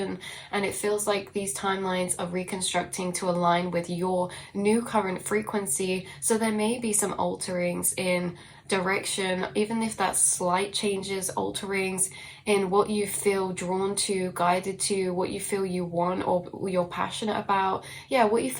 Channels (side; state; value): both; identical; correlation 1.00